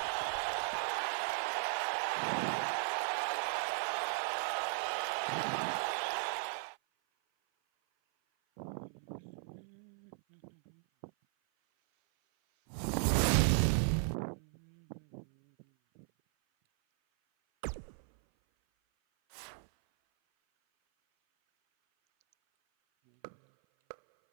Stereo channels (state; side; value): silent; left; 53 dB below the other